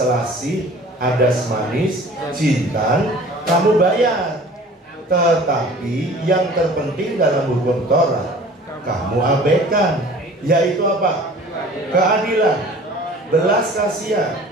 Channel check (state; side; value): normal; both; correlation 0.46